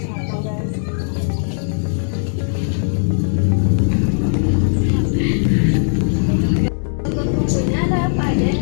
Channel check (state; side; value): silent; right; digital silence